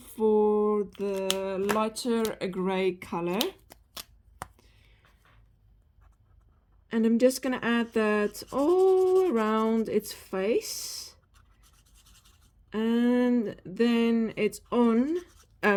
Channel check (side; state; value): both; identical; correlation 1.00